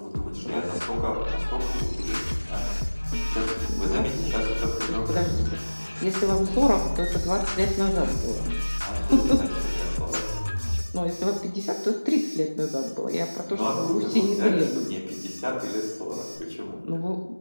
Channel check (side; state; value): both; inverted; correlation -1.00